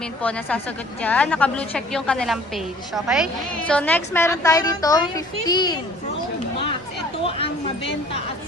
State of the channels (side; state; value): both; normal; correlation 0.52